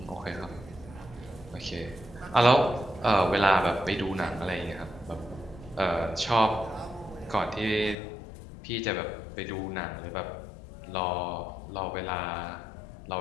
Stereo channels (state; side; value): drops out; right; at 8.0 s